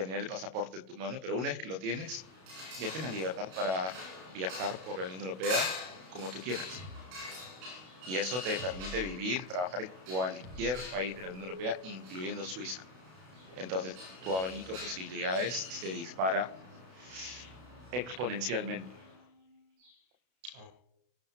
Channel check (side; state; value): left; late; 32 ms